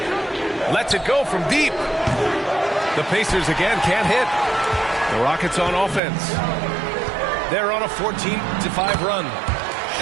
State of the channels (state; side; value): drops out; left; at 6.0 s